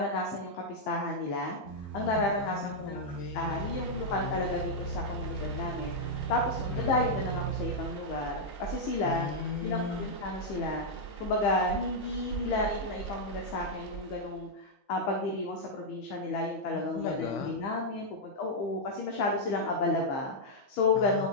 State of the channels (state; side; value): late; right; 15 ms